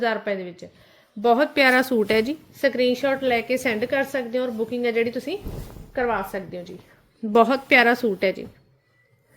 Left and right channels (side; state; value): both; identical; correlation 1.00